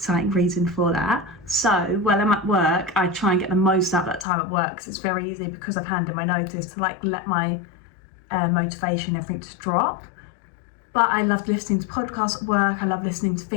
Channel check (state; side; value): drops out; right; at 4.2 s